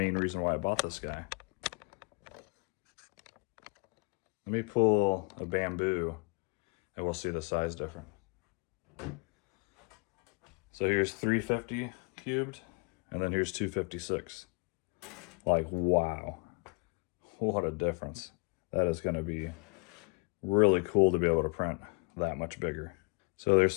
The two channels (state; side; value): quieter; right; 33.0 dB